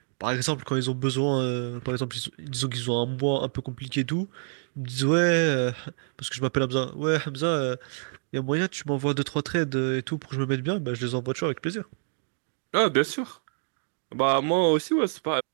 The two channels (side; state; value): left; silent; digital silence